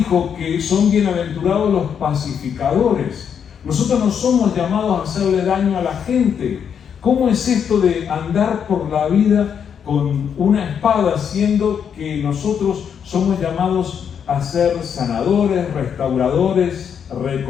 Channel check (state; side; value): quieter; right; 7.7 dB